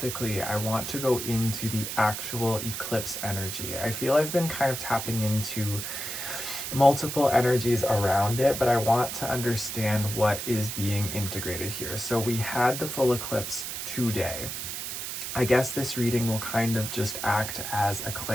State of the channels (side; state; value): right; noise; hiss, 5 dB below the sound